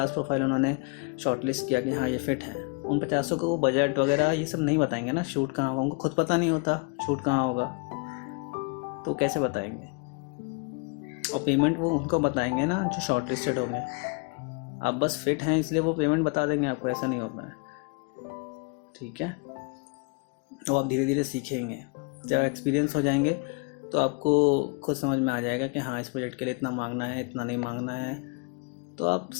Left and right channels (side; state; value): right; quieter; 32.4 dB